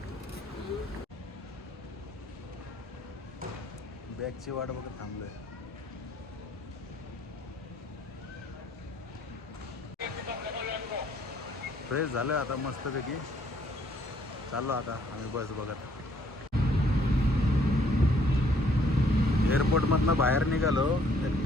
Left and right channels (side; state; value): both; normal; correlation 0.64